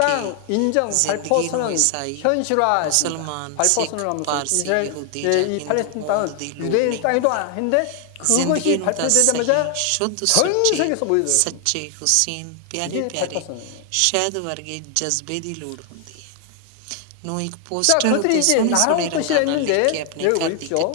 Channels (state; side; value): different; both; correlation 0.00